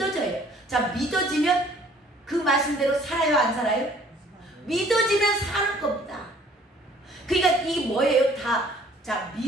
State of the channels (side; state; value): both; normal; correlation 0.56